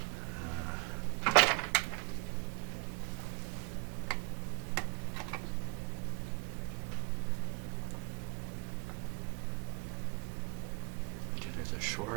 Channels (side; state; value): left; quieter; 28.0 dB